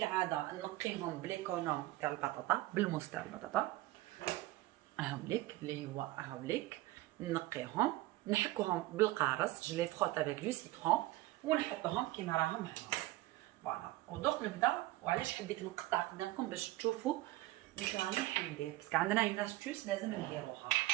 نقيهم بليكونوم تاع البطاطا، بالموس تاع البطاطا هاوليك اللي هو هاوليك، نقيهم نحكوهم بالقارص، جو لي فروت افيك دو سيترون ونحطوهم كيما راهم هنا. فوالا ودوك نبدا. وعلاش حبيت نقطع قدامكم باش تشوفوا واش راني حندير، باسكو عندنا اون استوس لازم نديروها.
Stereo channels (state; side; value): quieter; left; 17.9 dB